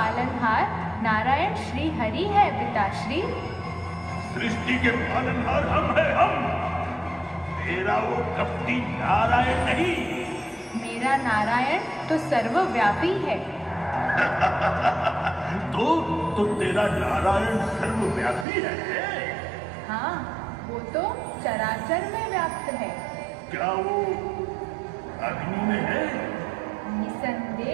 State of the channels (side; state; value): left; drops out; at 18.4 s